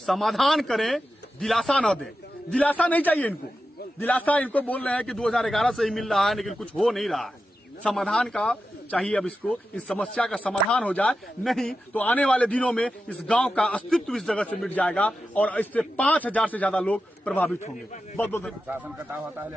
करें, दिलासा न दें। दिलासा नहीं चाहिए इनको, दिलासा इनको बोल रहे हैं कि 2011 से ही मिल रहा है, लेकिन कुछ हो नहीं रहा है। समाधान का चाहिए, अब इसको, इस समस्या का समाधान हो जाए, नहीं तो आने वाले दिनों में इस गांव का अस्तित्व इस जगह से मिट जाएगा और इससे 5000 से ज्यादा लोग प्रभावित होंगे। बहुत बहुत शासन कटाव होता है,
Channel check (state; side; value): normal; both; correlation 0.91